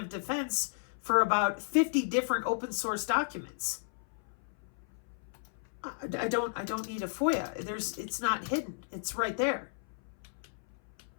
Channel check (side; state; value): right; silent; 55 dB below the other